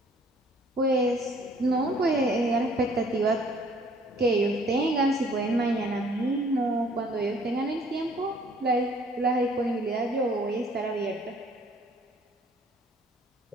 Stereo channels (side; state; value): both; normal; correlation 0.58